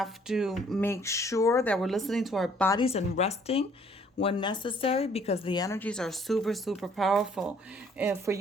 to make sure that we're listening to our bodies and resting when necessary, because the energies are super powerful. And for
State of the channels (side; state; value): both; normal; correlation 0.61